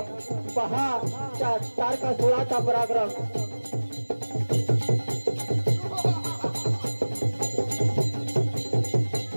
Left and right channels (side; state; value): both; inverted; correlation -1.00